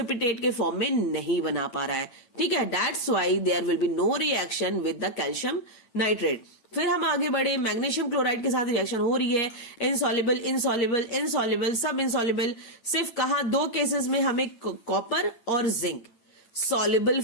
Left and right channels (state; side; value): late; right; 9.0 ms